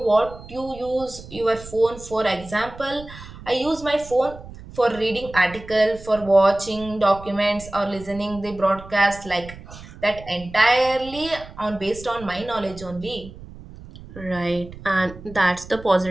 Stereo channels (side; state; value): right; noise; rumble, 16 dB below the sound